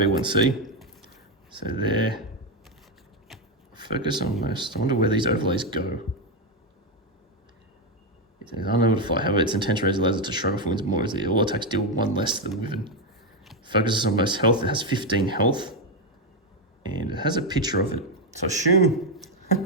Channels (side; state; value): both; normal; correlation 0.06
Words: 1C. So there. Focus on most. I wonder where these overlays go. It's unable to fly. However, its intention raise allows it to shrug off wings more easily. All attacks deal 1 less to the Wyvern. Focuses on most health. It has 15 health. And it has a picture of it. So assume...